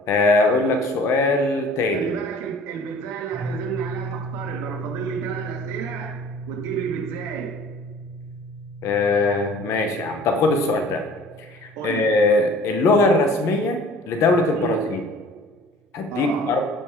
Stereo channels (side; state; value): both; normal; correlation 0.48